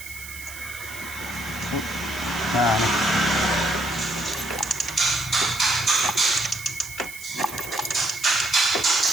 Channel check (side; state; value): right; noise; hiss, 13 dB below the sound